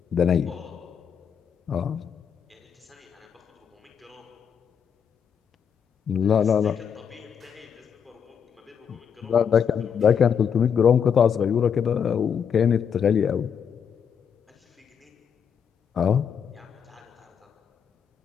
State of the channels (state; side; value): quieter; right; 7.4 dB